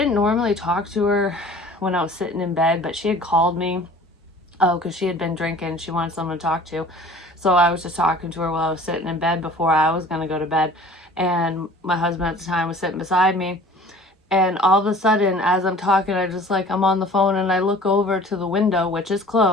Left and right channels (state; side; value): normal; both; correlation 0.47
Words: normally talk to her when I was sitting in bed, but she had called me. Oh, because she had been drinking. She wanted someone to talk to. So I was just talking to her while I was sitting in bed before I was going to go to bed. And my husband at the time was sitting beside me. And all of a sudden, as I'm talking, I'm on the phone and I look over to the window, which is